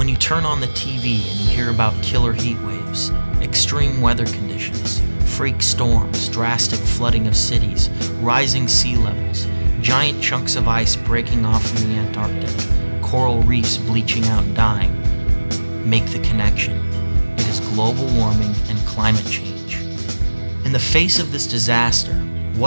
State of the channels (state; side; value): inverted; both; correlation -1.00